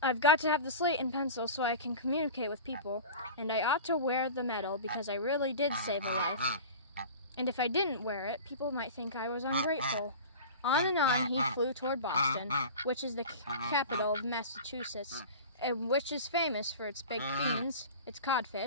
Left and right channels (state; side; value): inverted; both; correlation -0.34